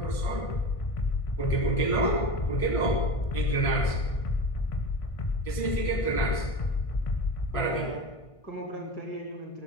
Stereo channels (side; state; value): right; late; 1.6 ms